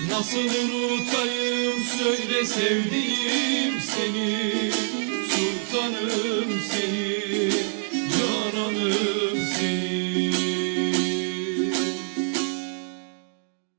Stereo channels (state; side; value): silent; left; 56 dB below the other